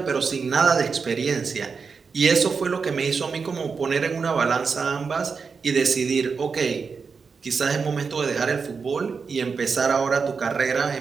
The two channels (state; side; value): quieter; left; 5.3 dB